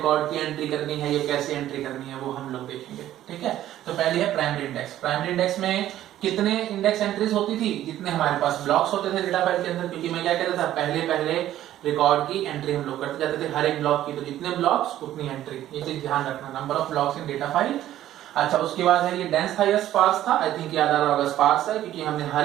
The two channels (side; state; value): left; quieter; 12.9 dB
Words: की एंट्री करनी है, ये कैसे एंट्री करनी है वो हम लोग देखेंगे। ठीक है, तो पहली है प्राइमरी इंडेक्स। प्राइमरी इंडेक्स में कितने इंडेक्स एंट्रीज होती थी, जितने हमारे पास ब्लॉक्स होते थे डेटा फाइल के अंदर। क्योंकि मैं क्या कहता था, पहले रिकॉर्ड की एंट्री हम लोग करते जाते थे हर एक ब्लॉक की, तो जितने ब्लॉक्स उतनी एंट्री, ये चीज ध्यान रखना, number of blocks in data file. अच्छा, उसके बाद है ये डेंस हाईएस्ट स्पार्स था, आई थिंक याद आ रहा होगा स्पार्स है, क्योंकि हमने हर